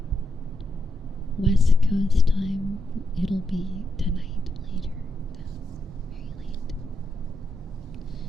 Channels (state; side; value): normal; both; correlation 0.82